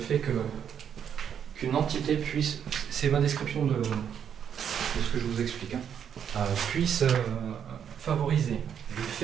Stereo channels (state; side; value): quieter; left; 8.4 dB